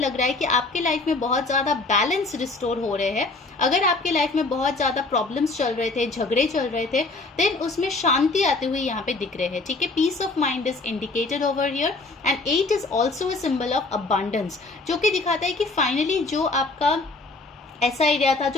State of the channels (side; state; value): right; quieter; 3.4 dB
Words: रहा है कि आपके लाइफ में बहुत ज्यादा बैलेंस रिस्टोर हो रहे हैं। अगर आपके लाइफ में बहुत ज्यादा प्रॉब्लम्स चल रहे थे, झगड़े चल रहे थे, देन उसमें शांति आते हुए यहाँ पे दिख रहे हैं, ठीक है। Peace of mind is indicated over here and 8 is also a symbol of abundance, जो कि दिखाता है कि फाइनली जो आपका ऐसा एरिया था